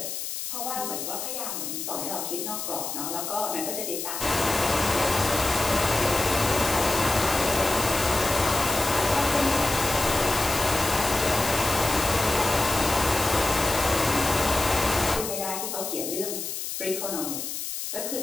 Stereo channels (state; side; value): noise; left; hiss, 5 dB below the sound